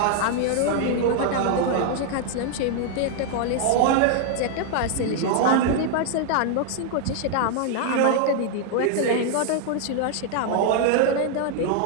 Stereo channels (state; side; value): different; both; correlation 0.00